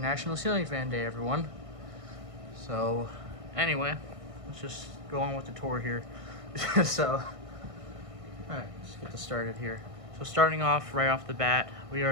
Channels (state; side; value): late; left; 1.6 ms